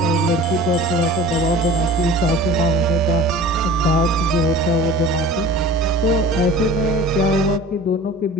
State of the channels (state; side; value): normal; both; correlation 0.41